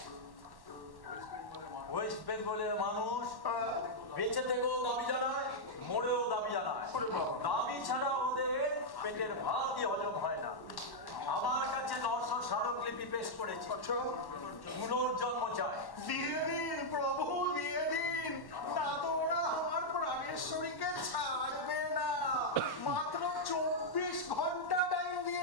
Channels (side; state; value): right; late; 1.1 ms